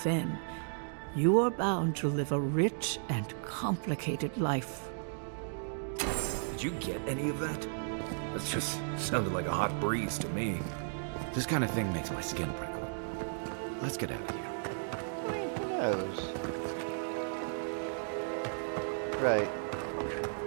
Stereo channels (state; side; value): silent; left; digital silence